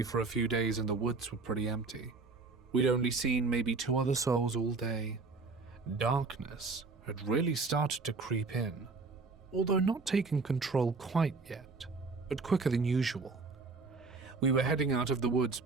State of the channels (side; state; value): left; quieter; 4.1 dB